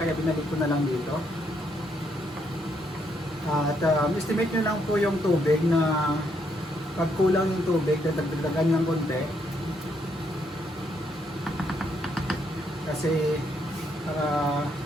binalik ko na lang dito. At estimate nyo lang po yung tubig na pag kulang yung tubig, dagdagan ng konti. Kasi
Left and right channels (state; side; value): normal; both; correlation 0.74